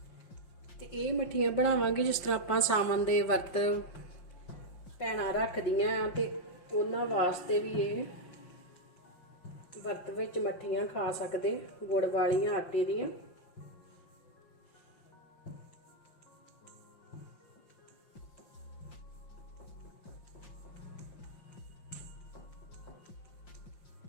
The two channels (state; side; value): late; right; 5.7 ms